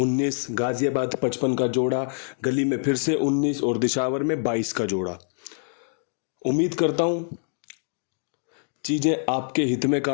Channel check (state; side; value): silent; right; digital silence